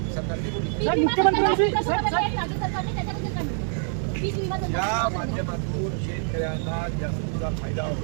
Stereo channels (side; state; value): left; silent; 61 dB below the other